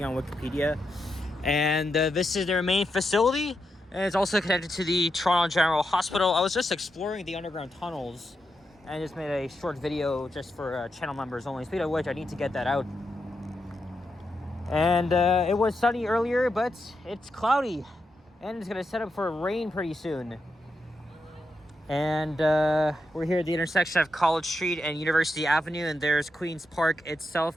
on Wikipedia. And this is their main facility, and it's also connected to the Toronto General Hospital. I was just exploring the underground tunnels and just made a short video just for channel members only. Speaking of which, I need to get that out. And it was sunny earlier, but it's cloudy, and it's going to set up for rain pretty soon. And we're here at the intersection of College Street and University Avenue, and there's Queen's Park itself,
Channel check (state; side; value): normal; both; correlation 0.85